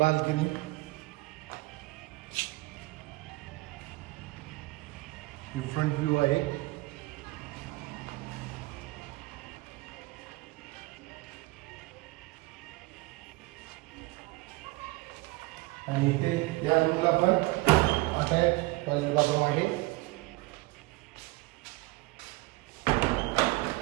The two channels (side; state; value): left; quieter; 22.1 dB